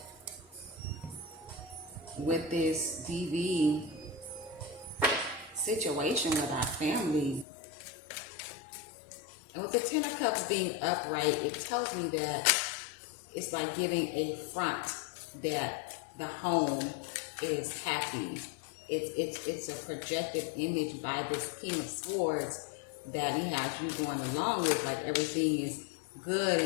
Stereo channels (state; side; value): drops out; right; at 7.5 s